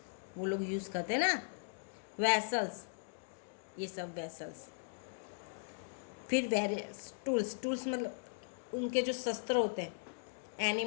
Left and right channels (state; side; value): silent; right; digital silence